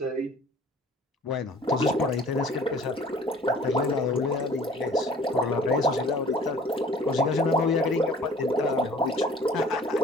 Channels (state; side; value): normal; both; correlation 0.50